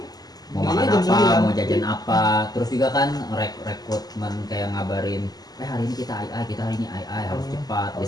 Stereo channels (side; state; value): right; late; 0.19 ms